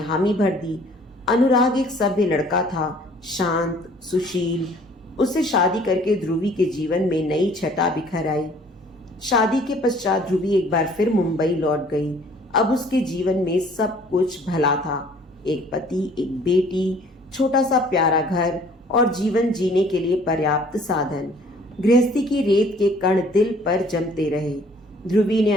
भर दी। अनुराग एक सभ्य लड़का था, शांत, सुशील। उससे शादी करके ध्रुवी के जीवन में नई छटा बिखर आई। शादी के पश्चात ध्रुवी एक बार फिर मुंबई लौट गई। अब उसके जीवन में सब कुछ भला था। एक पति, एक बेटी, छोटा सा प्यारा घर और जीवन जीने के लिए पर्याप्त साधन। गृहस्थी की रेत के कण दिल पर जमते रहे। ध्रुवी ने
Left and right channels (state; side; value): normal; both; correlation 0.55